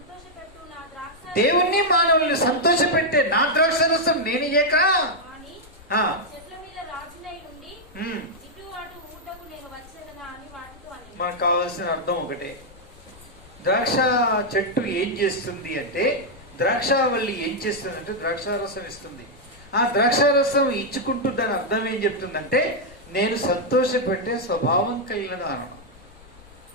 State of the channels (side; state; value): left; noise; rumble, 23 dB below the sound